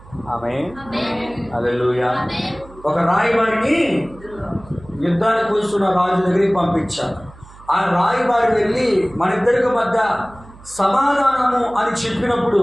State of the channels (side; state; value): right; noise; hum, 21 dB below the sound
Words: ఆమేన్. హల్లెలూయా. ఒక రాయబారిని యుద్ధానికి వస్తున్న రాజు దగ్గరికి పంపించాడు. ఆ రాయబారి వెళ్ళి మన ఇద్దరికి మధ్య సమాధానము అని చెప్పినప్పుడు